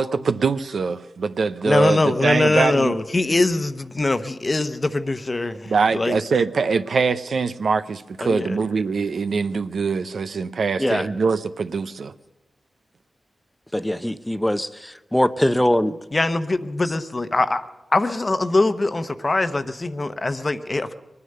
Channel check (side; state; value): both; normal; correlation 0.92